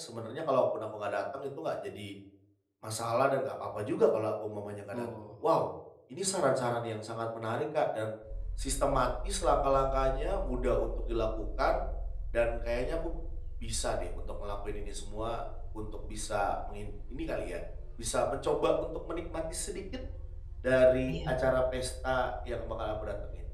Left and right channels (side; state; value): both; identical; correlation 1.00